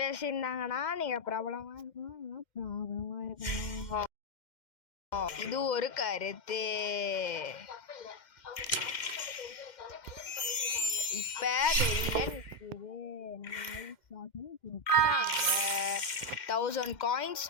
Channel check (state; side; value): late; right; 2.1 ms